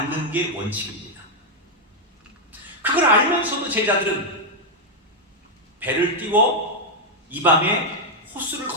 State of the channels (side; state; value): both; normal; correlation -0.01